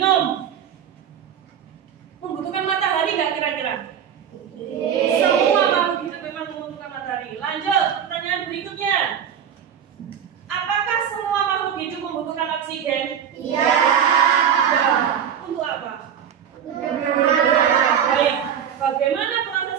Membutuhkan matahari nggak kira-kira? Semua makhluk hidup memang membutuhkan matahari. Lanjut, pertanyaan berikutnya. Apakah semua makhluk hidup membutuhkan oksigen? Iya. Untuk apa? Baik, bagaimana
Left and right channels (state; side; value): quieter; left; 8.6 dB